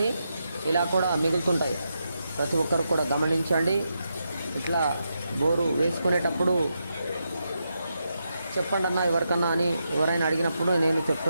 ఇలా కూడా మిగులుతుంటాయి. ప్రతి ఒక్కరు కూడా గమనించండి. ఇట్లా బోరు వేసుకునేటప్పుడు చెప్పండి అన్న ఎవరికన్నా అని ఎవరైనా అడిగినప్పుడు నేను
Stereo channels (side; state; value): both; inverted; correlation -0.85